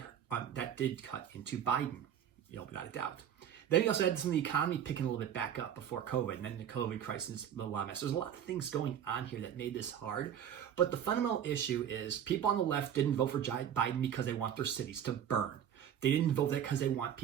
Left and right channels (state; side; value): quieter; left; 9.5 dB